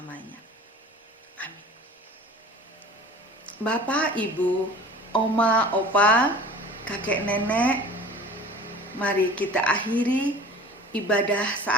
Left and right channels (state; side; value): normal; both; correlation 0.42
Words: Amin. Bapak, Ibu, Oma, Opa, kakek, nenek, mari kita akhiri ibadah